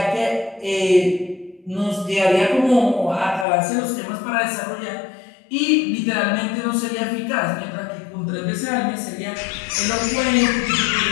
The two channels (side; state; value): right; drops out; at 3.5 s